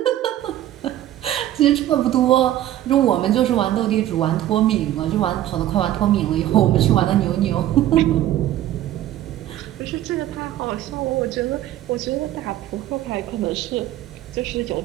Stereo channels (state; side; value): quieter; left; 13.1 dB